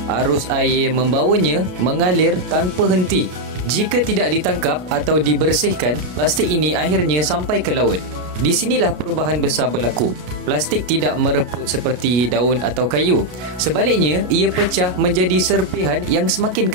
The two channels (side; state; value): left; late; 33 ms